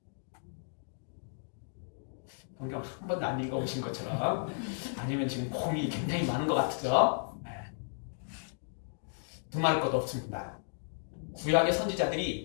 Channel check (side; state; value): right; silent; digital silence